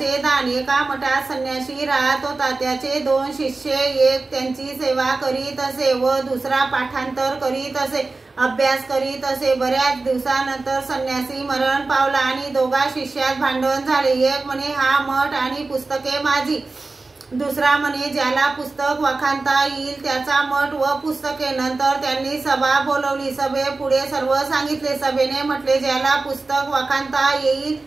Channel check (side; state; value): left; quieter; 3.6 dB